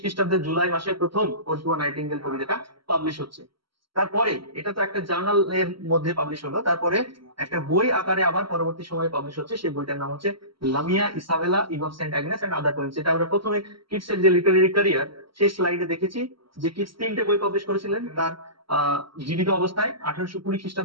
খ্রিস্টাব্দের জুলাই মাসে প্রথম ওড টু আ নাইটিঙ্গেল কবিতাটা পাবলিশ হচ্ছে। তারপরে এটা তো একটা জার্নালের মধ্যে পাবলিশ হলো, তারপরে একটা বই আকারে আবার পরবর্তী সময়ে পাবলিশ হচ্ছে। সেই বইটার নাম হচ্ছে Lamia Isabella Eve of Saint Agnes and other poems. এটা আমরা প্রথমে কিটসের যে লিটারেরি ক্যারিয়ার, সেই স্লাইডে দেখেছি যে কিটস 3টে বই পাবলিশ করেছিলেন তার জীবিত অবস্থায়। 1820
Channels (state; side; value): late; left; 0.74 ms